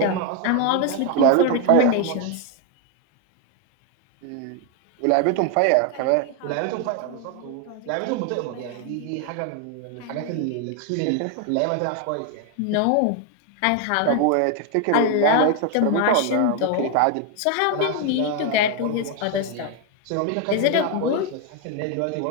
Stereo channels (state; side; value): different; both; correlation 0.01